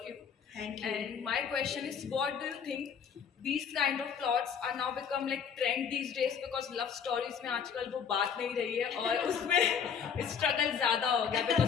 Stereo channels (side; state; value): right; quieter; 7.2 dB